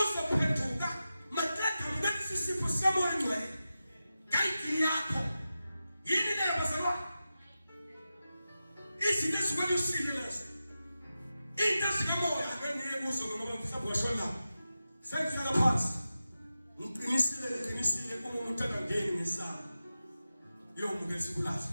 maqeda mbese isipho sikamoya ngcwele. Kayiki yakho. Yini le bazalwane? Izinto ezikwelosile lezo. into sikamoya ngeniye kuso ngoba mhlawumbe washona sengihlala phansi ngiqinisile uma umuntu angangeni ngesana yomuntu esikulahla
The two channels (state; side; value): inverted; both; correlation -0.92